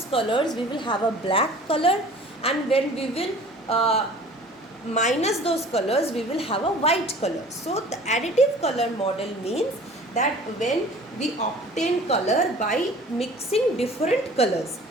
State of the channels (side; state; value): both; normal; correlation 0.46